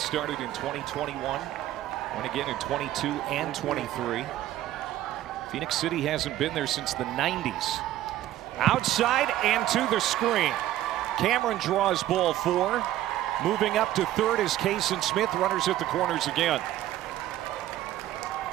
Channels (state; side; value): quieter; left; 13.7 dB